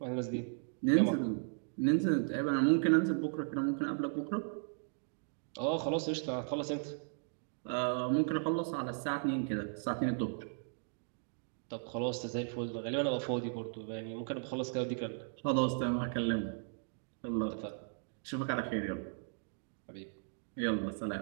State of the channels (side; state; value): left; silent; digital silence